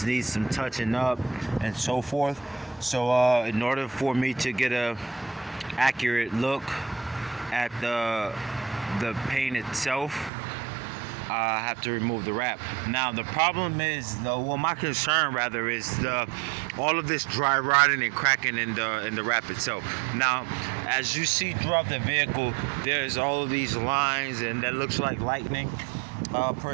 needs some touching up and so forth. So in order for me to get a accurate look at the paint itself, I have to remove the wrap. Now the problem is, my concern rather is all of this dry rotting and cracking in the wrap itself. Now, as you see throughout the vehicle, there's all of these lines, and that looks like lightning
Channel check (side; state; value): left; drops out; at 10.3 s